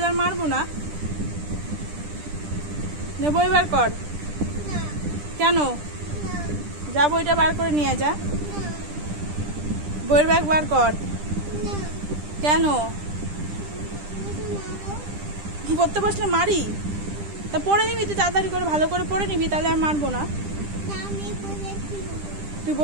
আর মারবো না। নে বই বার কর। কেন? যা বইটা বার করে নিয়ে যা। বইয়ের ব্যাগ বার কর। কেন? কি পড়তে বসলে মারি? তা পড়ে নিবি, তুই তাড়াতাড়ি করে ভালো করে পড়ে নিবি, তাহলে আর মারবো না। তুই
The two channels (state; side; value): late; left; 10 ms